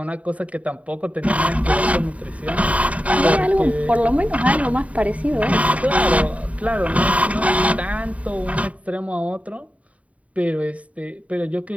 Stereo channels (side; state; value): left; late; 0.067 ms